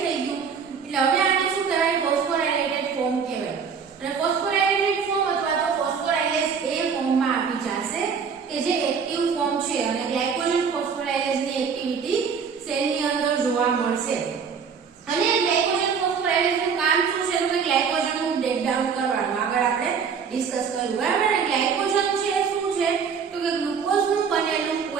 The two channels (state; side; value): quieter; left; 6.3 dB